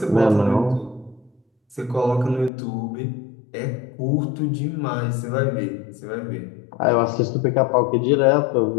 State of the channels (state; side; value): drops out; right; at 2.5 s